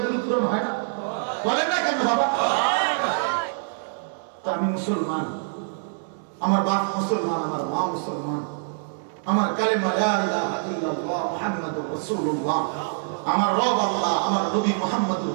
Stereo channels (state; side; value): silent; left; digital silence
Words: পূরণ হয় না? বলেন না কেন বাবা? তো আমি মুসলমান, আমার বাপ মুসলমান, আমার মা মুসলমান, আমার কালেমা লা ইলাহা ইল্লাল্লাহ মুহাম্মাদুর রাসূলুল্লাহ, আমার রব আল্লাহ, আমার নবী মুহাম্মদুর